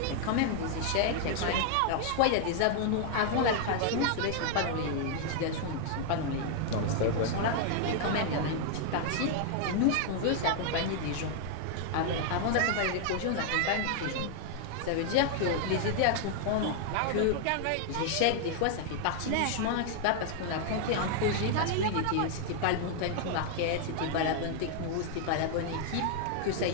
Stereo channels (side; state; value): both; different; correlation 0.00